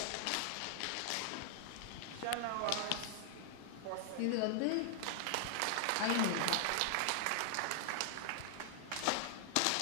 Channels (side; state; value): both; different; correlation 0.00